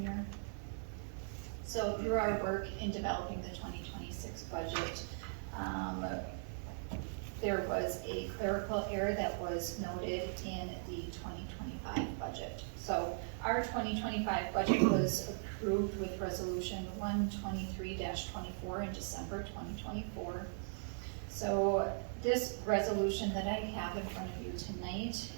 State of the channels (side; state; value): left; silent; digital silence